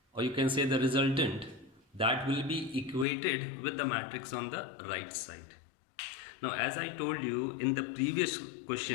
or you can say the resultant, that will be equated with the matrix on the right side. Now, as I told you in the previous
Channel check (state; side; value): drops out; right; at 3.1 s